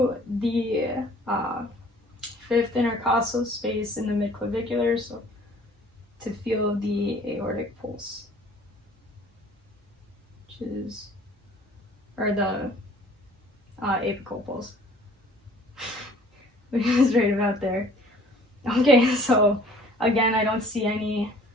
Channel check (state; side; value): normal; both; correlation 0.53